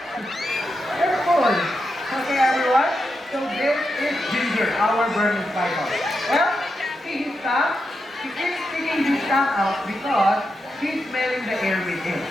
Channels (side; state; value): both; normal; correlation 0.86